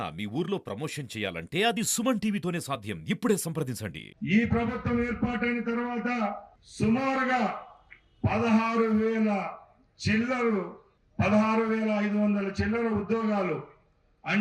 మీ ఊర్లో promotion చేయాలంటే అది సుమన్ టీవీతోనే సాధ్యం. ఇప్పుడే సంప్రదించండి. ఈ ప్రభుత్వం ఏర్పాటైన తర్వాత సుమారుగా 16,000 చిల్లరు 16,500 చిల్లర ఉద్యోగాలు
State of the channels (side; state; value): both; identical; correlation 1.00